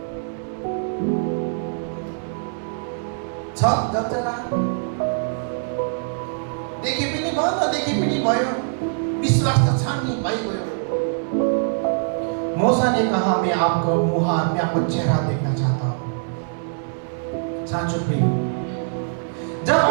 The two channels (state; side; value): silent; left; digital silence